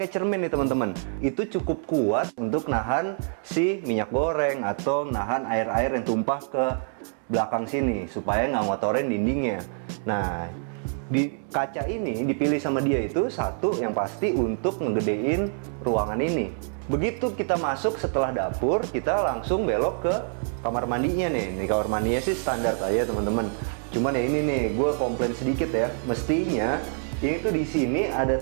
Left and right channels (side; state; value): left; silent; 61 dB below the other